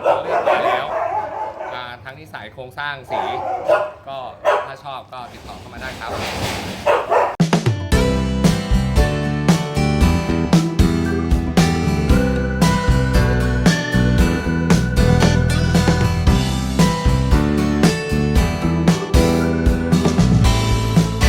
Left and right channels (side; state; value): both; identical; correlation 1.00